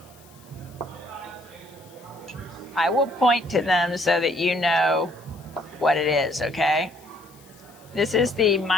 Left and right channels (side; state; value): left; noise; hiss, 26 dB below the sound